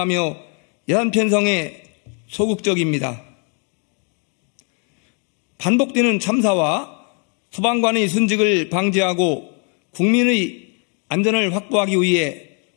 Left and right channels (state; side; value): quieter; right; 38.9 dB